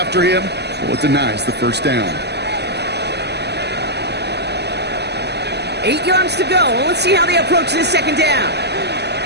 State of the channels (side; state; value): left; late; 0.49 ms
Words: him, well, it denies the 1st down. 8 yards to go. Let's see how they approach this 2nd down.